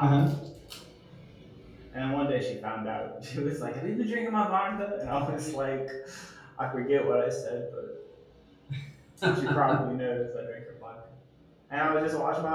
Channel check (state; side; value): identical; both; correlation 1.00